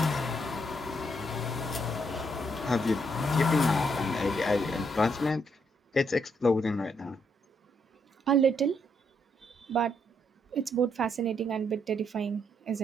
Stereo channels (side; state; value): both; normal; correlation 0.75